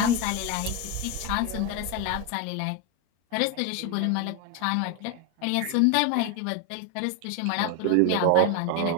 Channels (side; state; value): both; different; correlation 0.02